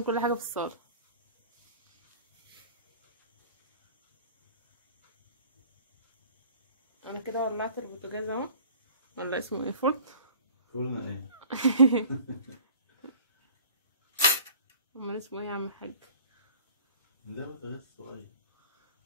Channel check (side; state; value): both; inverted; correlation -0.47